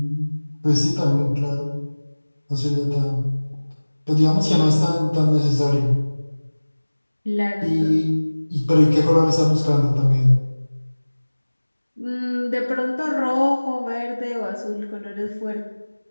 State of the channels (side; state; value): both; inverted; correlation -1.00